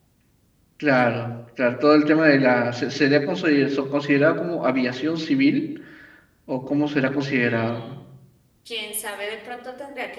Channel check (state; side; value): identical; both; correlation 1.00